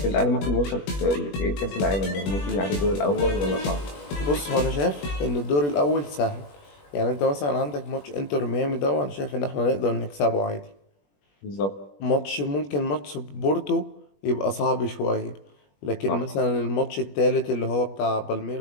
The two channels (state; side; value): late; right; 21 ms